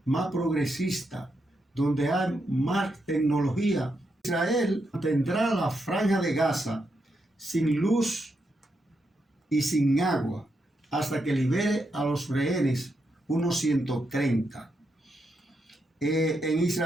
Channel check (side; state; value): both; normal; correlation 0.82